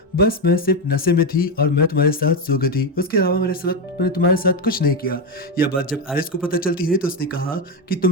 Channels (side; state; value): both; normal; correlation 0.10